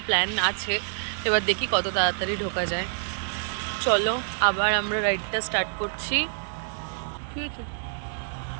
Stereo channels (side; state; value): left; silent; digital silence